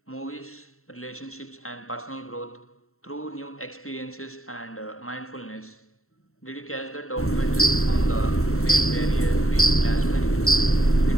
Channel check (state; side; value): late; right; 0.63 ms